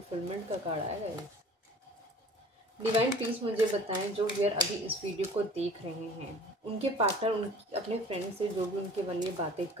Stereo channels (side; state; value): both; normal; correlation 0.46